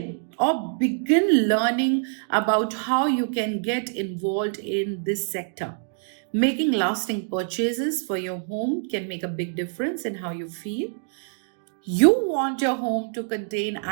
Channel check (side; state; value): left; silent; digital silence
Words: or begin learning about how you can get involved in this sector. Making lasting purchases for your home can make a big difference in how you feel. You want your home to contain